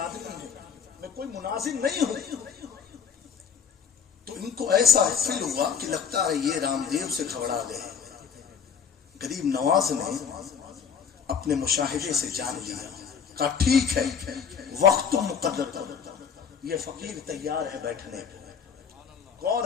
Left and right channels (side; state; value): right; quieter; 6.8 dB